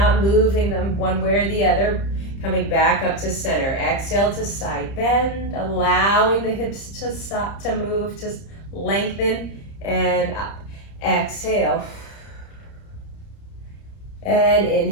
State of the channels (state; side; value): late; right; 30 ms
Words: moving them one way or the other. Coming back up to center. Exhale to side bend, allowing the hips to stop, to move, to lengthen, and up. Exhale. And